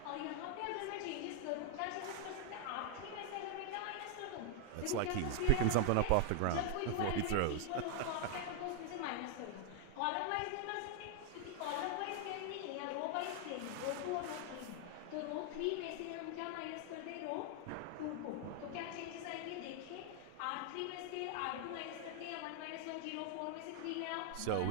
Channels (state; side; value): different; both; correlation 0.00